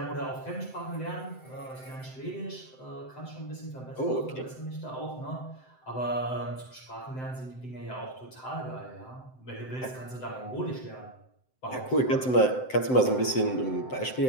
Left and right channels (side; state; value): right; late; 7.8 ms